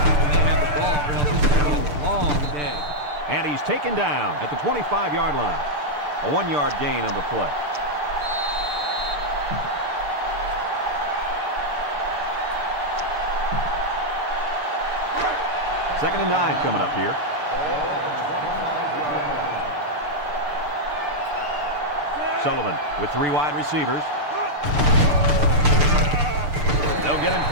when they have the ball, or else it's going to be a long day. And he's taken down at the 25-yard line. A 1-yard gain on the play. Second and 9 coming up here. Sullivan with 3 wide receivers. They'll get him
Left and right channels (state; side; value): late; left; 6.8 ms